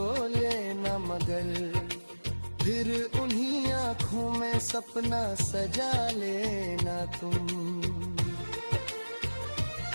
लेना, मगर फिर उन्हीं आंखों में सपना सजा लेना तुम।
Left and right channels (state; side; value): inverted; both; correlation -1.00